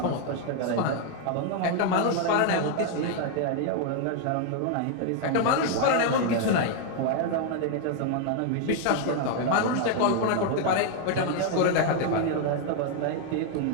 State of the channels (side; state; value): both; different; correlation 0.00